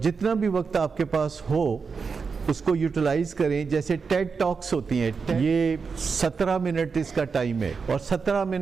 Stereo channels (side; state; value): left; quieter; 5.3 dB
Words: جتنا بھی وقت آپ کے پاس ہو اس کو یوٹیلائز کریں۔ جیسے ٹیڈ ٹاکس ہوتی ہیں، یہ 17 منٹ اس کا ٹائم ہے، اور 17